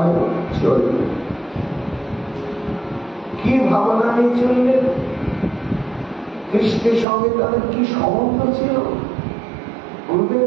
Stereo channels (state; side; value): drops out; left; at 7.1 s